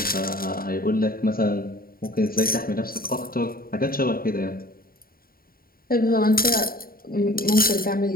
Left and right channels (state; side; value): late; right; 0.43 ms